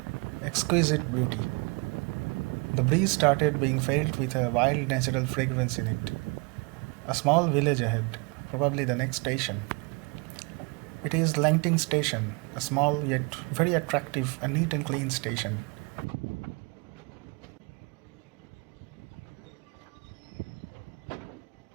exquisite beauty. The breeze started being filled with a wild natural fragrance in it. A small village ahead, probably the next station. It is Langting Station, a small yet very attractive and neat and clean station.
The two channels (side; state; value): left; quieter; 31.7 dB